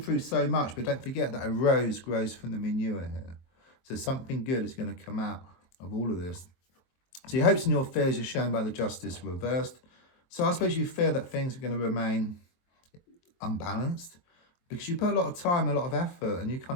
so much, but don't forget that a rose grows from the manure here. So something good is going to come out of all of this. So your hopes and your fears are shown by the Justice reversed. So I suppose you fear that things are going to remain unbalanced because you put a lot of time, a lot of effort, and you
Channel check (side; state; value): right; late; 23 ms